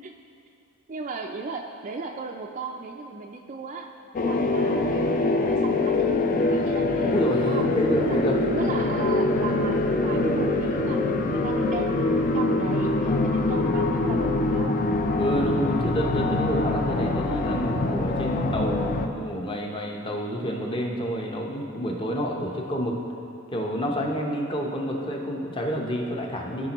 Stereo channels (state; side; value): normal; both; correlation 0.46